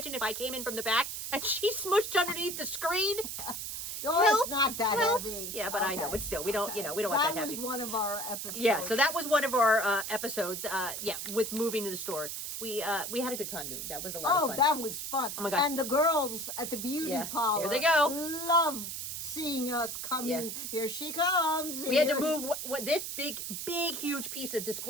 if I came in from the back and she smushed underneath the screen? it's not that help. heavy. Yeah, but I know, Okay. but still, we don't, we don't want that That heavy. was one of our episodes. Yeah, so that was one of our episodes. With moving to the store, we had a good time doing. That was a lot of fun. That was fun. Oh my gosh. And the girls at the beauty parlor, here they go. Love seeing us coming. Yeah. Here she comes. We had to move what this big, huge piece of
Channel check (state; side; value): noise; right; hiss, 5 dB below the sound